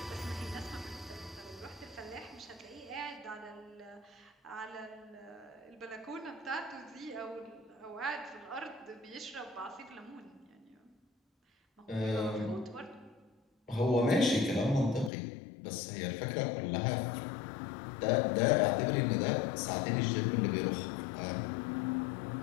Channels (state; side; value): drops out; right; at 15.1 s